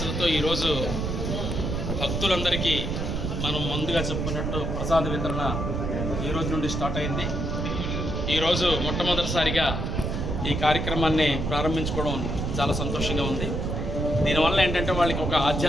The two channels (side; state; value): right; noise; rumble, 2 dB below the sound